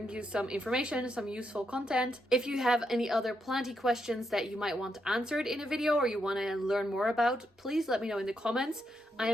you some information, some useful content. If you have any other planty questions that you might want answered in a video or you want to learn more about, please let me know in the comments. I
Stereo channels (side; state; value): both; normal; correlation 0.81